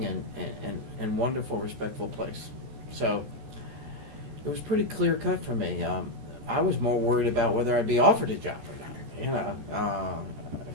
and wonderful, respectful place. So it was pretty clear cut for me. I was more worried about whether I'd be offered a job or not, you know,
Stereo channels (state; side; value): late; left; 14 ms